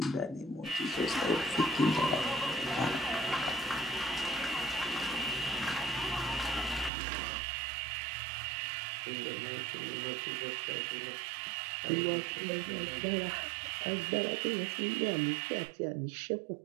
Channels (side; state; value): left; drops out; at 6.9 s